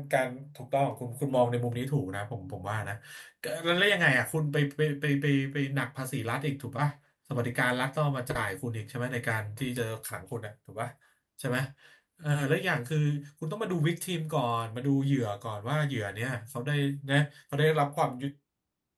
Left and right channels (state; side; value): identical; both; correlation 1.00